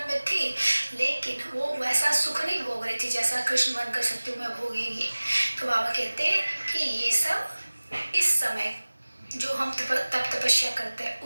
में थी, लेकिन वो वैसा सुख नहीं भोग रही थी जैसा कृष्ण बनकर सत्युग में भोगेंगी। तो बाबा कहते हैं कि ये सब इस समय जो हम तप तपस्या करते हैं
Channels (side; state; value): both; inverted; correlation -1.00